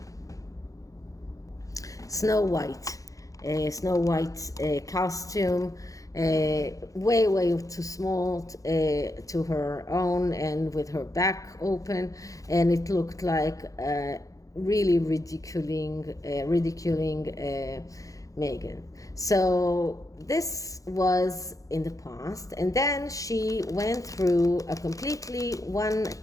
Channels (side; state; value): right; late; 0.16 ms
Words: Snow White costume. Way too small to her own, and with her back open, and it looked like really ridiculing Meghan. So this was in the past, and then she went through a completely